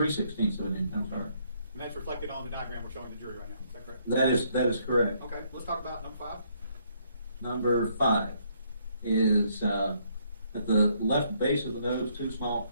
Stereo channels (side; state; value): both; inverted; correlation -0.70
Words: of an inch, I'm sorry. And that's reflected on the diagram we're showing the jury right now. Is that correct? That is correct. Okay. Let's talk about number 5. Number 5 is at the left base of the nose, 2 small